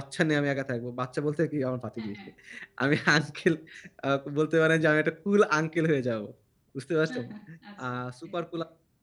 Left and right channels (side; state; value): both; identical; correlation 1.00